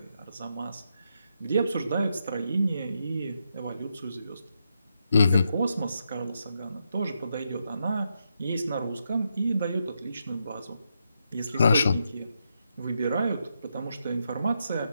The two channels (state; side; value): inverted; both; correlation -0.82